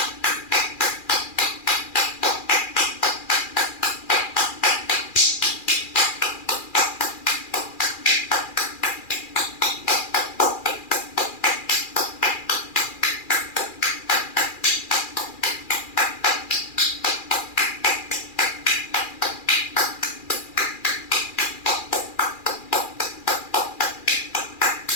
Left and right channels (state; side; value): late; right; 2.4 ms